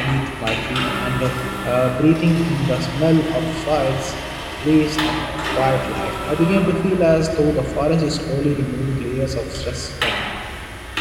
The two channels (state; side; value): identical; both; correlation 1.00